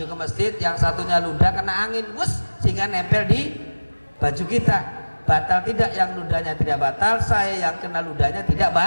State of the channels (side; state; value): both; inverted; correlation -1.00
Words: ke masjid, yang satunya ludah kena angin sehingga nempel di baju kita. Batal tidak? Yang ludahnya tidak batal, saya yang kena ludahnya tidak